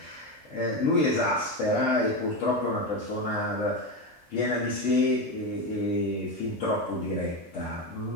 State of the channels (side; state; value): both; normal; correlation 0.15